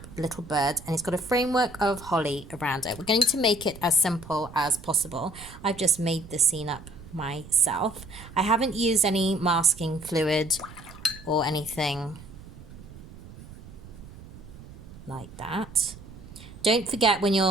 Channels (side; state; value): right; noise; rumble, 17 dB below the sound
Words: little bird, and it's got a framework of holly around it. We're going to make it as simple as possible. I've just made the scene up myself. I haven't used any masking fluid or anything like that. Don't forget when